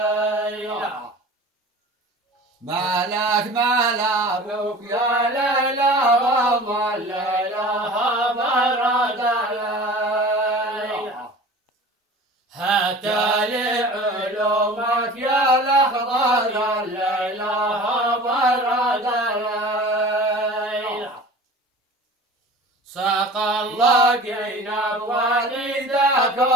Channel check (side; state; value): both; normal; correlation 0.40